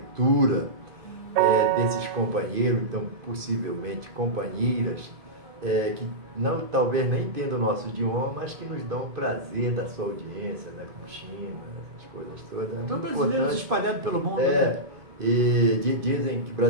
desses companheiros, então possivelmente companheiras, que não, talvez nem entendam o nosso idioma, mas que nos dão o prazer da sua audiência, né, como China, essas coisas todas. Então, brasileiros espalhados pelo mundo. Né? E dizem que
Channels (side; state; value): left; late; 2.5 ms